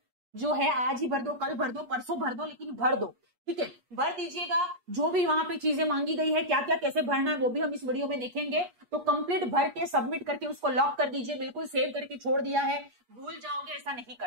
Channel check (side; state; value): left; late; 8.4 ms